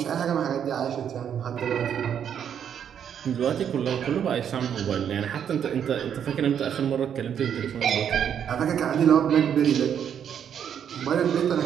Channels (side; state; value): left; quieter; 8.6 dB